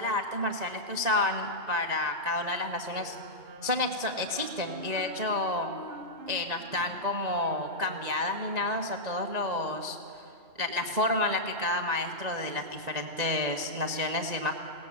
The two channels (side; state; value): left; late; 1.9 ms